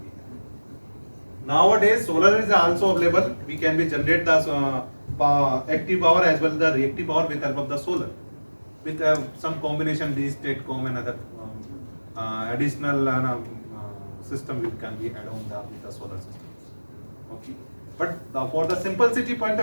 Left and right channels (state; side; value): inverted; both; correlation -1.00